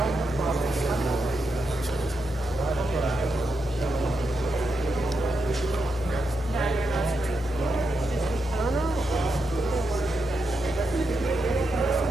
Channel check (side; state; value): both; normal; correlation 0.84